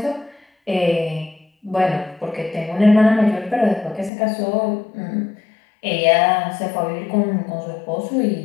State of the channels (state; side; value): drops out; right; at 4.1 s